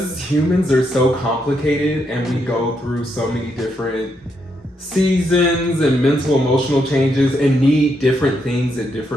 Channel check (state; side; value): normal; both; correlation 0.79